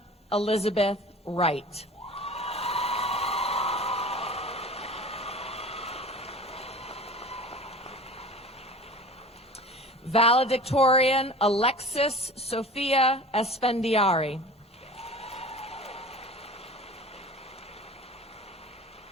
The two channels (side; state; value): both; normal; correlation 0.39